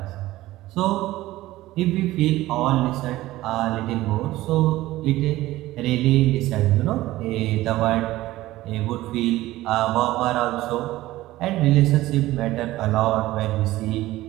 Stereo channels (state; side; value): quieter; left; 16.7 dB